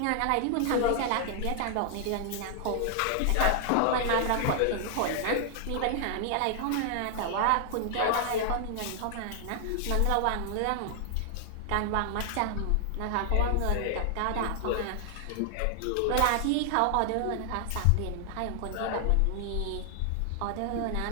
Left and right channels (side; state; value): both; different; correlation 0.00